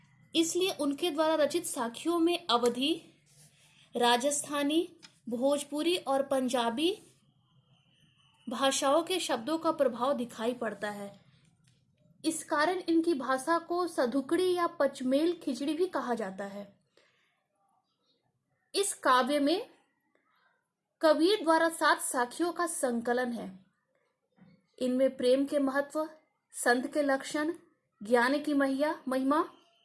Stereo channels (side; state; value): both; identical; correlation 1.00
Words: इसलिए उनके द्वारा रचित साखियों में अवधी, राजस्थानी, भोजपुरी और पंजाबी भाषाओं के शब्दों का प्रभाव दिखाई पड़ता है। इस कारण इनकी भाषा को सधुकड़ी या पचमेल खिचड़ी भी कहा जाता है। इस काव्य में कबीर द्वारा 7 साखियों का संकलन है। इनमें प्रेम के महत्व, संत के लक्षण, ज्ञान की महिमा,